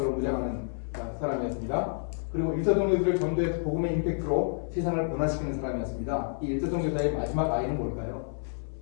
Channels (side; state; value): right; silent; 58 dB below the other